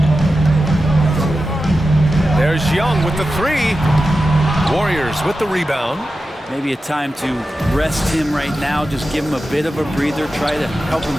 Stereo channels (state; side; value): normal; both; correlation 0.92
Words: There's Young with the 3. Warriors with the rebound. Maybe a time to rest him right now, just give him a bit of a breather, try to help